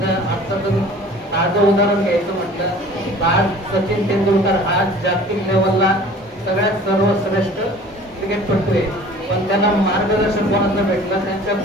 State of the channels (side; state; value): both; normal; correlation 0.47